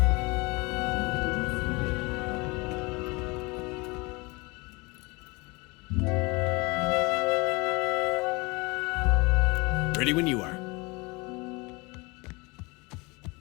Ready when you are.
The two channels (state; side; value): quieter; right; 26.1 dB